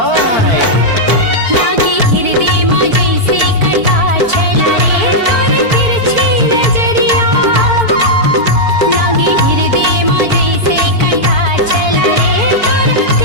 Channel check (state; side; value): late; left; 4.5 ms